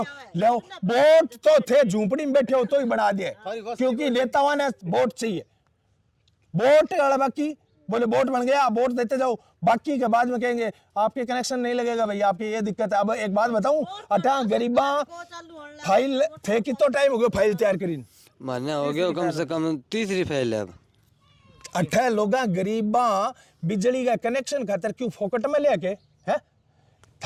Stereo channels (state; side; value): identical; both; correlation 1.00